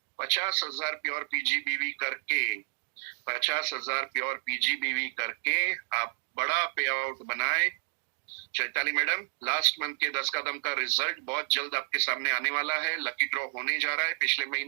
50,000 प्योर पीजीबीवी करके, 50,000 प्योर पीजीबीवी करके आप बड़ा पे आउट बनाए। चैताली मैडम, लास्ट मंथ के 10 कदम का रिजल्ट बहुत जल्द आपके सामने आने वाला है। लकी ड्रॉ होने जा रहा है पिछले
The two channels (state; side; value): silent; left; digital silence